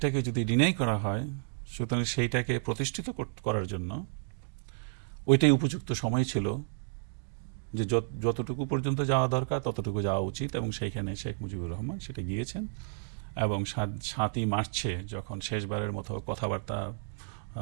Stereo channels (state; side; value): silent; left; digital silence